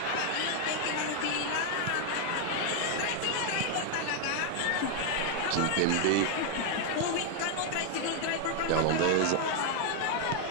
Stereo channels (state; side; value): different; both; correlation 0.00